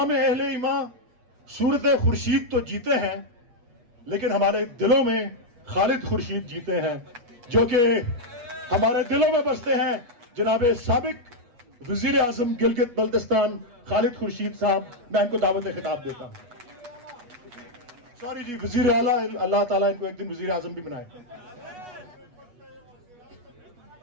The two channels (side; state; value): left; late; 8.2 ms